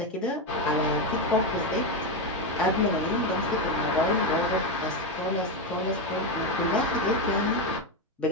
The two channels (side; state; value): both; normal; correlation 0.10